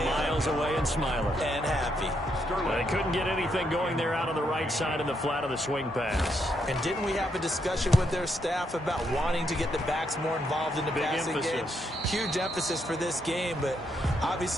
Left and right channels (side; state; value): both; normal; correlation 0.77